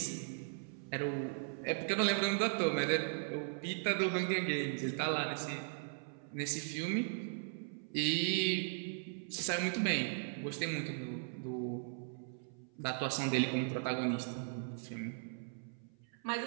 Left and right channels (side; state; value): left; silent; 52 dB below the other